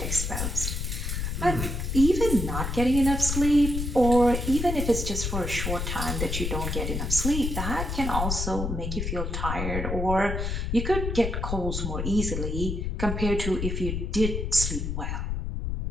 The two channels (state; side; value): noise; left; rumble, 2 dB below the sound